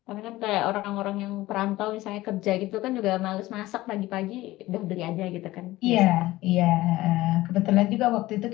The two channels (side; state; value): right; quieter; 17.5 dB